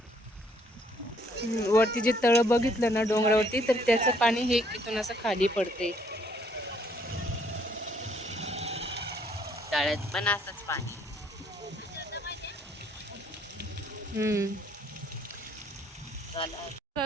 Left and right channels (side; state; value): both; normal; correlation 0.66